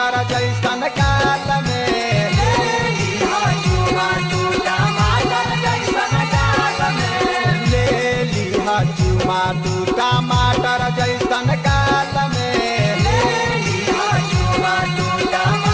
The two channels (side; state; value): both; identical; correlation 1.00